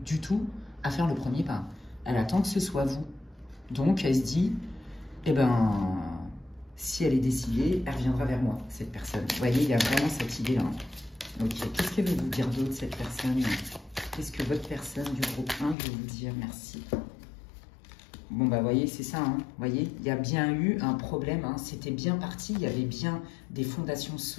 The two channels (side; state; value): right; drops out; at 15.8 s